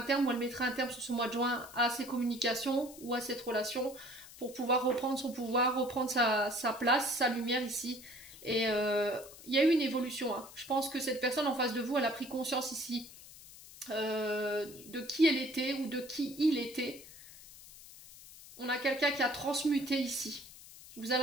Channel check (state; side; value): noise; left; hiss, 18 dB below the sound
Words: terme ou elle mettra un terme sur ce mois de juin à ces communications ou à cette relation pour pouvoir reprendre son pouvoir, reprendre sa place, sa lumière ici. Et il y a eu une évolution. Hein. Je pense que cette personne en face de vous, elle a pris conscience ici de qui elle était ou de qui il était. On a quelqu'un qui a transmuté ici. Vous